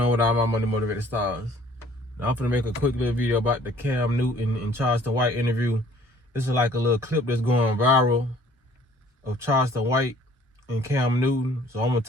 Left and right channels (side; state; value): both; normal; correlation 0.56